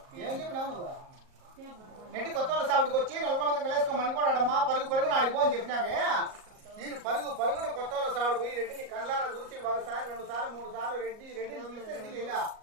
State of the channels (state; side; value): late; left; 38 ms